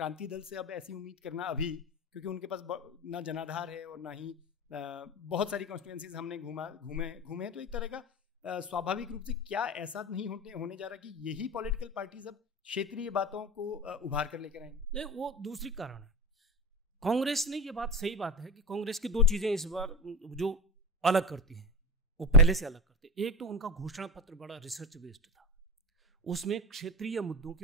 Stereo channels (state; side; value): normal; both; correlation 0.24